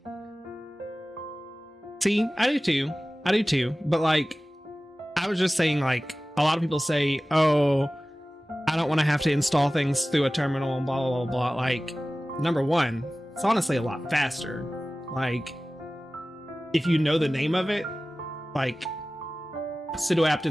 See, I do too. I do too. But like, I was just saying, like, a lot of people say, oh, I don't want to have to install things through a terminal and blah, blah, blah, blah. Like, number one, it's honestly a lot faster. Like, if you know the name of it, like, sudo apt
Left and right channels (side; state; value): both; normal; correlation 0.97